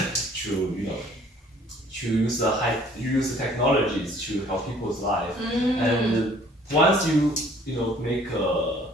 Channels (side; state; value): both; normal; correlation 0.56